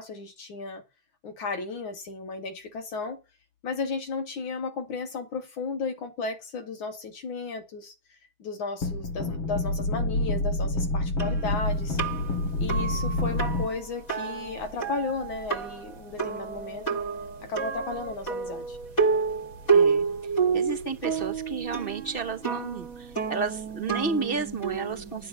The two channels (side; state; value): right; late; 6.1 ms